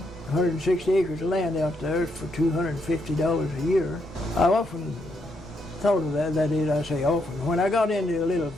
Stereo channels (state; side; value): normal; both; correlation 0.78